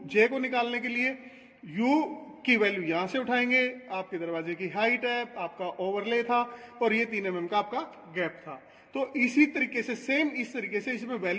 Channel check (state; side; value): identical; both; correlation 1.00